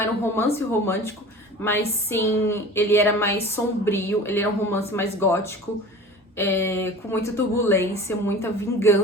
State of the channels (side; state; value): both; normal; correlation 0.39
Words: um romance romântico, mas sim, ele era mais sombrio, ele era um romance mais gótico, com muita turbulência, muita